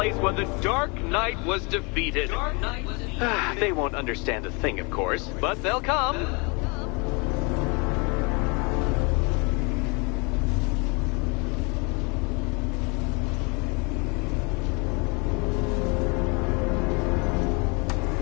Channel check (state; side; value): quieter; right; 30.7 dB